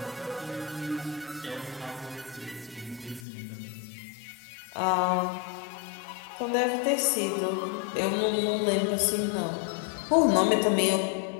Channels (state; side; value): drops out; right; at 3.2 s